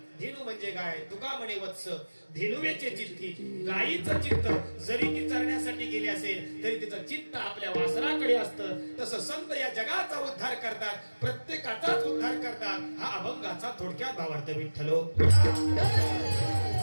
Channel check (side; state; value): both; inverted; correlation -1.00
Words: धेनू म्हणजे गाय, तुका म्हणे वत्स धेनुवेचे चित्ती. गायीचं चित्त जरी ती चरण्यासाठी गेली असेल तरी तिचं चित्त आपल्या वासराकडे असतं. तसं संत या जगाचा उद्धार करतात, प्रत्येकाचाच उद्धार करतात. हा अभंगाचा थोडक्यात भावार्थ विठ्ठलो.